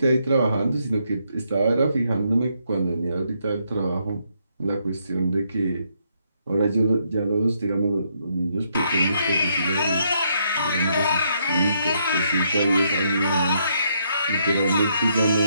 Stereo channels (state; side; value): inverted; both; correlation -0.74